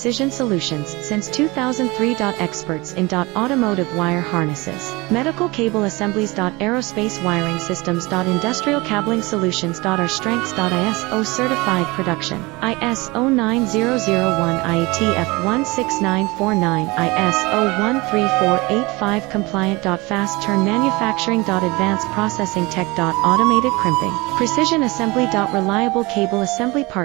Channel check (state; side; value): quieter; left; 23.7 dB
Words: Solutions since 2003. Experts in automotive wire harnesses, medical cable assemblies. Aerospace wiring systems. Industrial cabling solutions. Our strengths. ISO certified production, ISO 9001 IATF 16949, ISO 13485 compliant. Fast turn manufacturing. Advanced processing tech. Automated crimping, precision assembly. Reliable cable assembly